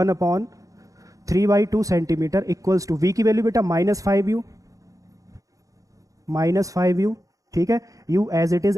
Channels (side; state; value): left; late; 0.16 ms